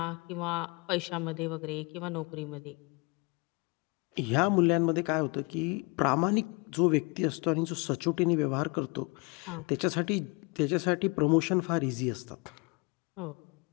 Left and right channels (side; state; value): right; quieter; 29.8 dB